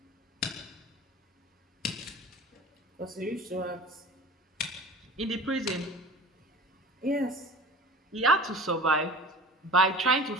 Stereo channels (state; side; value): normal; both; correlation 0.39